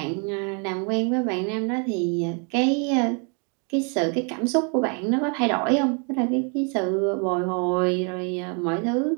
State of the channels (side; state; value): left; quieter; 37.9 dB